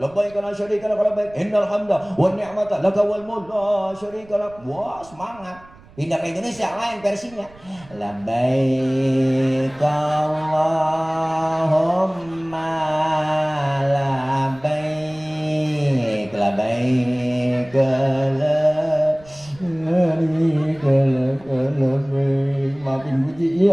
labbaik la syarika lak labbaik, innal hamda wan ni'mata laka wal mulk la syarika lak. Semangat. Pindah ke Indonesia lain versinya. Labbaik Allahumma labbaik, labbaik la syarika lak. Maafin puji,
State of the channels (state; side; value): noise; right; rumble, 24 dB below the sound